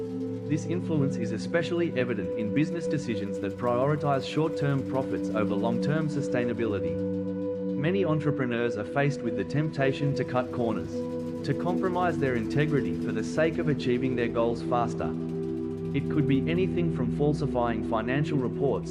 This influence is especially evident in business decisions that prioritize short-term profits over long-term sustainability. Many entrepreneurs are faced with the temptation to cut corners, to compromise their integrity for the sake of achieving their goals faster. It could be anything from falsifying financial reports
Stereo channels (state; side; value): identical; both; correlation 1.00